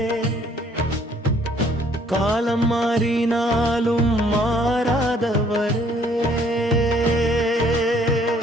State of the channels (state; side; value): normal; both; correlation 0.62